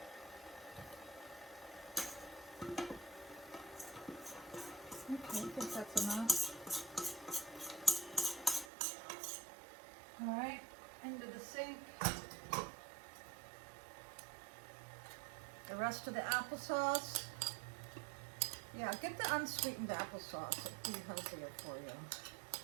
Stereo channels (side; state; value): left; drops out; at 8.7 s